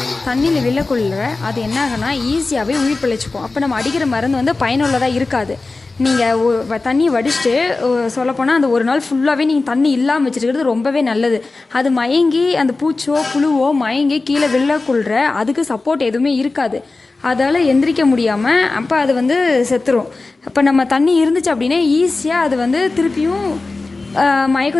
தண்ணியில் விழக்குள்ள அது என்ன ஆகுனா ஈஸியாகவே உயிர் பிழைச்சிக்கும். அப்போ நம்ம அடிக்கிற மருந்து வந்து பயனுள்ளதாக இருக்காது. நீங்கள் தண்ணி வடிச்சிட்டு சொல்லப்போனால் அந்த ஒரு நாள் ஃபுல்லாகவே நீங்கள் தண்ணி இல்லாமல் வச்சுருக்கிறது ரொம்பவே நல்லது. அது மயங்கி அந்த பூச்சோ புழுவோ மயங்கி கீழே விழக்குள்ள அதுக்கு சப்போர்ட் எதுவுமே இருக்காது. அதால் எந்திரிக்க முடியாமல் அப்போ அது வந்து செத்துரும். அப்போ நம்ம தண்ணி இருந்துச்சு அப்படின்னா ஈஸியாக அது வந்து திருப்பியும்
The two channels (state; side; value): quieter; right; 3.6 dB